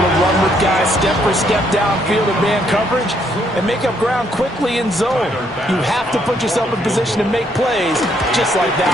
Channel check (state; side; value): normal; both; correlation 0.71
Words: to run with guys step for step downfield in man coverage and make up ground quickly in zone. You have to put yourself in position to make plays, just like that